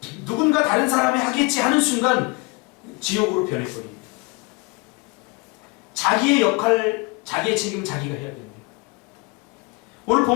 누군가 다른 사람이 하겠지 하는 순간 지옥으로 변해버립니다. 자기의 역할, 자기의 책임 자기가 해야 됩니다. 오늘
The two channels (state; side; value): quieter; right; 28.3 dB